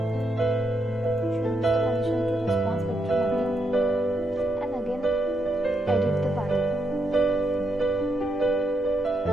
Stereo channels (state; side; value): normal; both; correlation 0.80